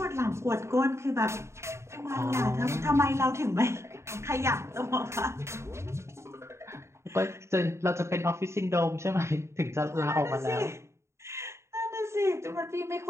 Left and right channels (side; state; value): left; late; 0.13 ms